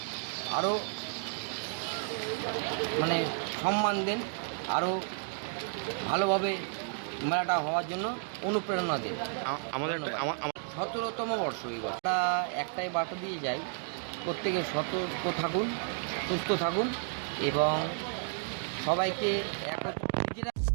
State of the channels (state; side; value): silent; left; 56 dB below the other